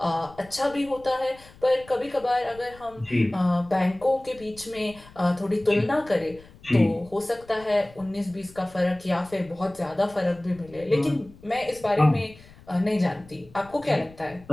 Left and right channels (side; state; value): left; noise; rumble, 23 dB below the sound